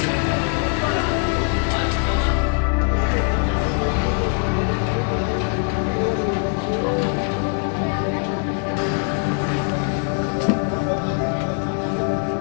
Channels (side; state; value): right; quieter; 39.5 dB